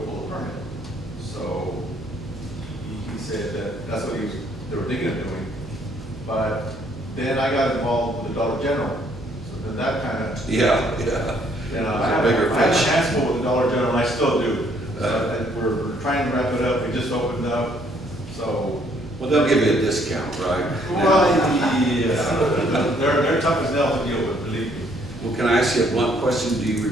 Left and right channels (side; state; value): right; noise; hum, 16 dB below the sound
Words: pull a permit. So he said that that's what they were thinking of doing. But then I got involved with the Dollar General. So then that kind of, Yeah. you know, It's a I bigger had a fish. handful with the Dollar General, and I still do. And we're trying to wrap it up, we just opened up, so. Well, they'll give you a discount, right? Well, yeah, they're tough as nails to deal with, believe me. Well, can I ask you a blunt question? Do you